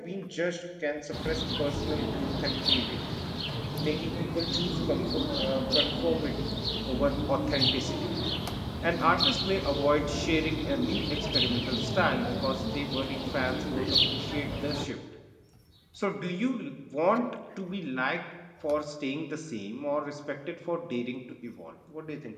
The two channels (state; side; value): identical; both; correlation 1.00